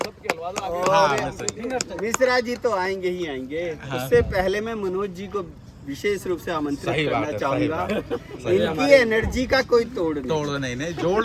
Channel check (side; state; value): both; identical; correlation 1.00